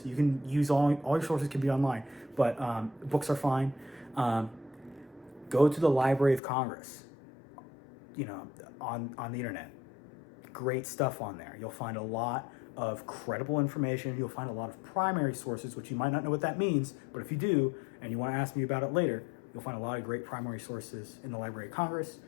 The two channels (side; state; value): right; drops out; at 6.4 s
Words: You can use all your sources can be online, but books are fine. Go to the Library of Congress, on the internet. Great stuff on there. You'll find a lot of credible information. You'll find a lot of primary sources, which you might not know what that means, but if you do, and you want to ask me about it later, you'll find a lot of great primary sources in the Library of Congress.